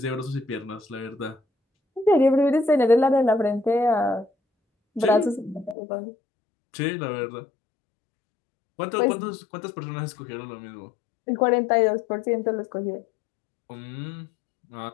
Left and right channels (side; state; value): right; drops out; at 5.8 s